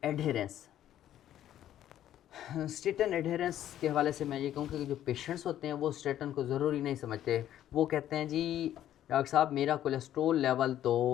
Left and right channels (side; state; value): right; quieter; 11.8 dB